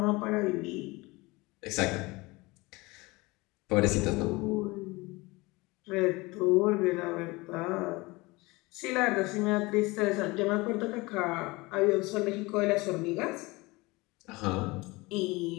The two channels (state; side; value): quieter; right; 23.1 dB